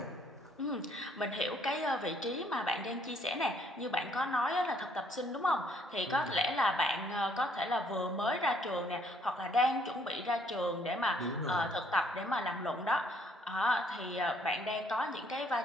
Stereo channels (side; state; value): both; normal; correlation 0.65